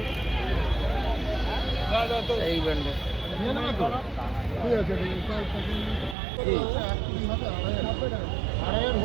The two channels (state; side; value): drops out; left; at 6.2 s